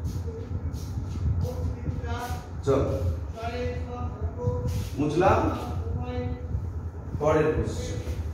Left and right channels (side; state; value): both; identical; correlation 1.00